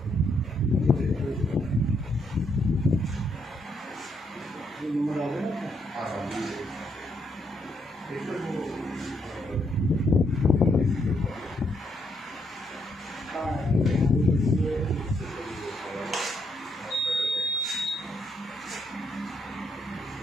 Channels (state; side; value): normal; both; correlation 0.75